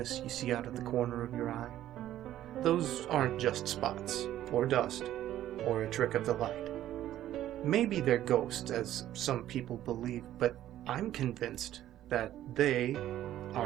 you see out of the corner of your eye, those aren't just spots, or dust, or a trick of the light. Maybe they're ghosts, as some people believe, but I'm convinced that they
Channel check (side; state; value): left; quieter; 12.8 dB